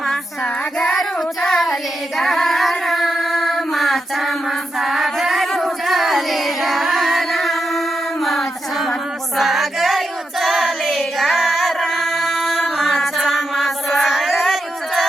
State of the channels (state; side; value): normal; both; correlation 0.86